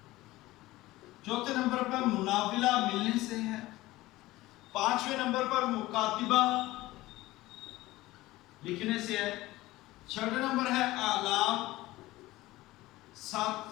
چوتھے نمبر پر مناولہ ملنے سے ہے، پانچویں نمبر پر مکاتبہ لکھنے سے ہے، چھٹے نمبر ہے اعلام،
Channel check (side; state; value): right; quieter; 18.1 dB